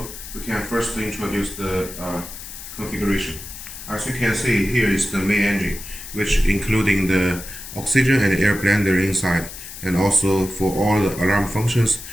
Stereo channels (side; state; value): left; noise; hiss, 12 dB below the sound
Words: we can first introduce the configuration. As you can see, here is the main engine, which including the oxygen and air blender inside, and also for all the alarm functions